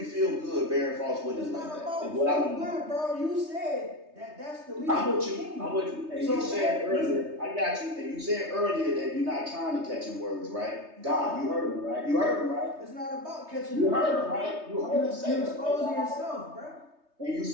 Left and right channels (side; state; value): left; late; 3.2 ms